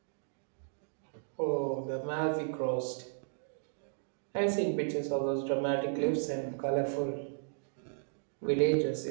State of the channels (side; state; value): left; silent; digital silence